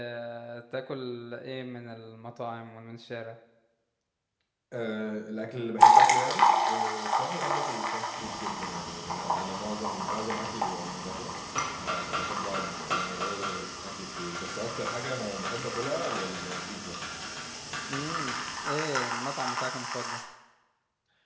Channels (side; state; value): both; identical; correlation 1.00